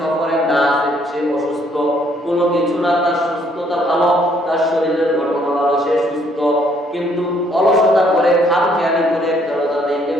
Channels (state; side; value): normal; both; correlation 0.66